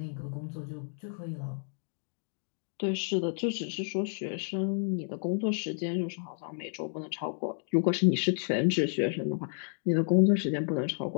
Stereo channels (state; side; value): silent; right; 57 dB below the other